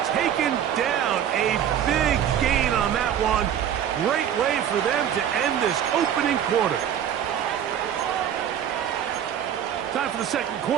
taken down. A big gain on that one. Great way for them to end this opening quarter. Time for the second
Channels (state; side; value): quieter; left; 9.6 dB